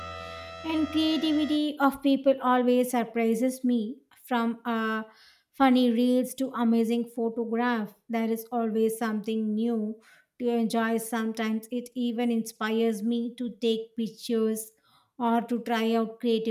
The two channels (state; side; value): identical; both; correlation 1.00